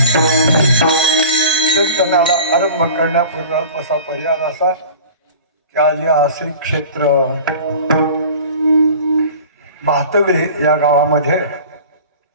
कीर्तनाला आरंभ करण्यापूर्वी असा पर्याय असा की आज या श्री क्षेत्र भातगळे या गावामध्ये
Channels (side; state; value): both; inverted; correlation -0.41